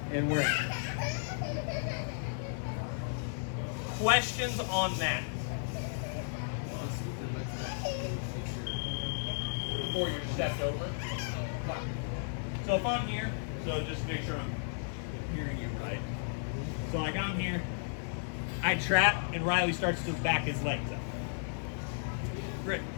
and we're in. Questions on that? Before you're stepped over. So if I'm here, so just make sure I'm hearing you right. So like I'm here, I trap, and Riley starts to back his legs up. Great.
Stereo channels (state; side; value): silent; right; 55 dB below the other